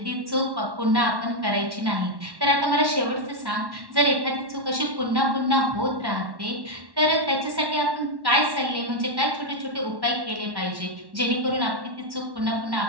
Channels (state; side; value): late; left; 1.1 ms